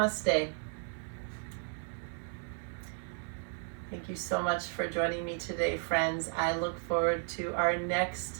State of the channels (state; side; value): silent; left; 55 dB below the other